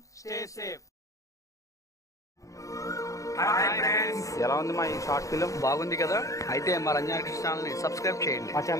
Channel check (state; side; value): late; right; 0.16 ms